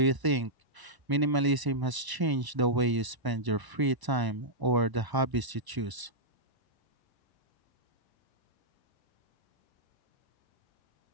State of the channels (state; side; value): late; left; 1.0 ms